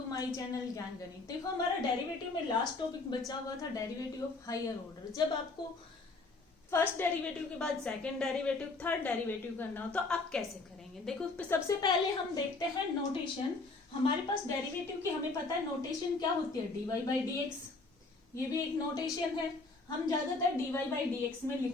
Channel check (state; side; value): quieter; right; 3.6 dB